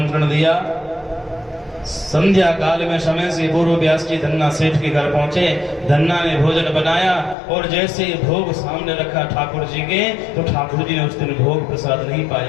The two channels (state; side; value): drops out; right; at 7.4 s